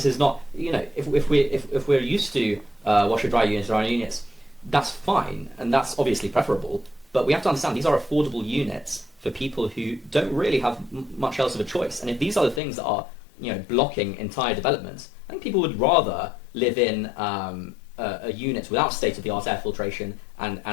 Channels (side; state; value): right; drops out; at 12.6 s